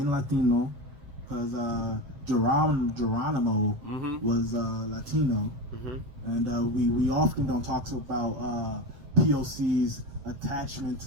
Latino, because Geronimo was Latino, and we often don't talk about POC's attachment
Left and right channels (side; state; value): left; late; 7.2 ms